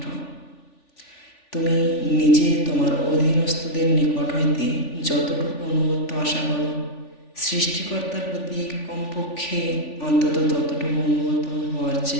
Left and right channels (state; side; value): late; right; 3.4 ms